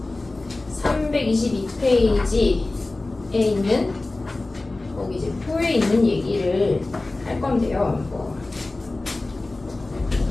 322페이지에 있는 거기 이제 표에 있는 얘기를 할 건데요.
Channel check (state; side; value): quieter; right; 3.1 dB